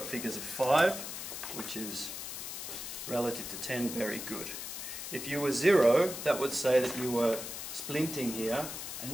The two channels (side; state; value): left; noise; hiss, 7 dB below the sound